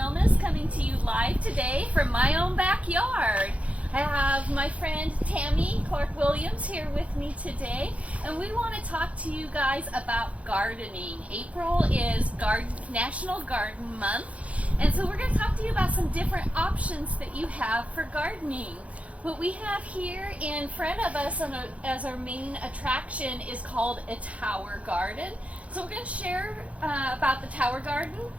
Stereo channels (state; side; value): late; left; 0.065 ms